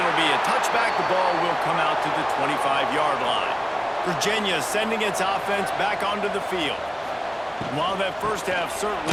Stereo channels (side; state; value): both; identical; correlation 1.00